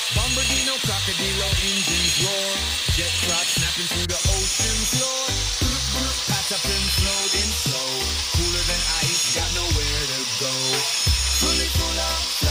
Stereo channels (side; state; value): both; identical; correlation 1.00